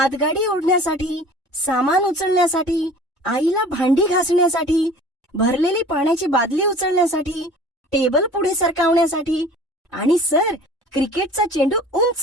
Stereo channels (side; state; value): both; normal; correlation 0.45